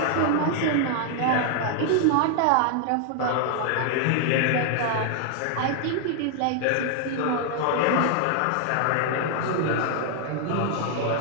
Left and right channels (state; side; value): different; both; correlation 0.00